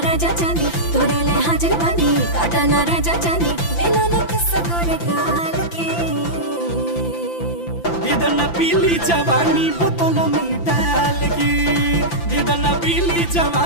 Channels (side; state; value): right; late; 5.9 ms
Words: राजा जानी, तोरे ले हाजिर बानी काटा ना राजा जानी। मिलो न किस्सा गोरे गाल के, दीदन पीली जवानी बोतल में डाल के, दीदन पीली